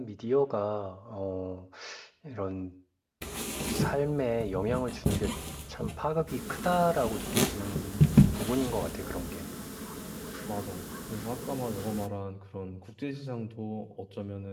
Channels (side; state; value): both; identical; correlation 1.00